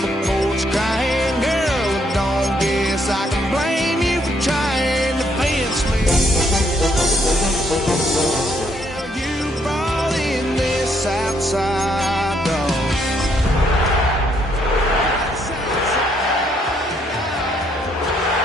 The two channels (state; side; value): normal; both; correlation 0.71